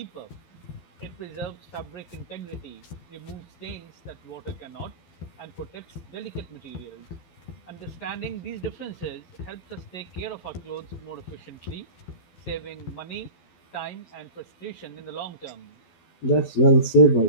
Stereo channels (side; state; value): right; late; 12 ms